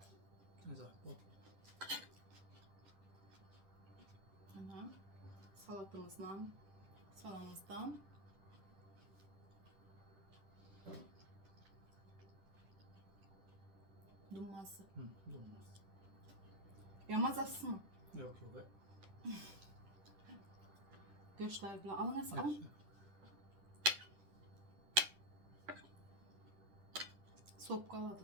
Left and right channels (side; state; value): left; late; 10 ms